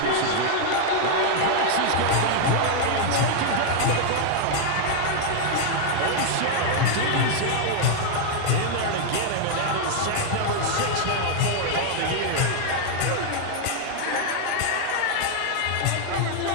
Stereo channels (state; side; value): different; both; correlation 0.00